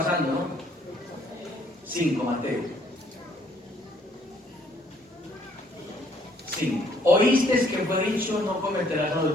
¿no? 5, Mateo. 5. Oísteis que fue dicho, no cometerás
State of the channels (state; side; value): normal; both; correlation 0.64